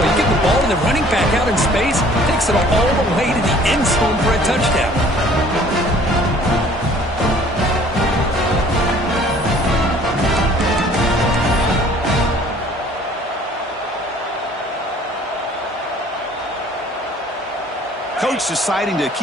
You get the ball to the running back out in space, takes it all the way to the end zone for a touchdown. Coach deciding to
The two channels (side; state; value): both; normal; correlation 0.54